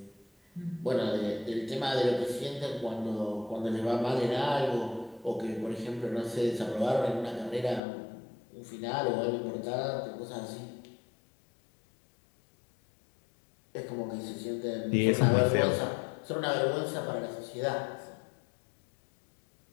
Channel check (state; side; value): drops out; right; at 7.8 s